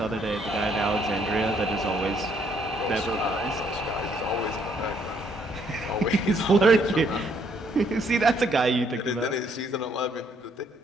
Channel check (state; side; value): normal; both; correlation 0.69